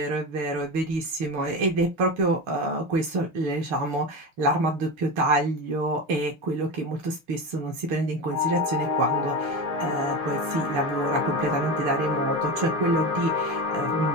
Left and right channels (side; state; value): left; late; 6.2 ms